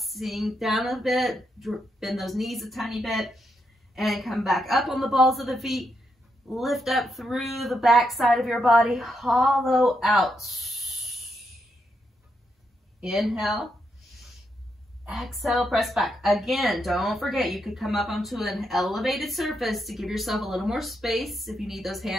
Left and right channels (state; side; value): normal; both; correlation 0.81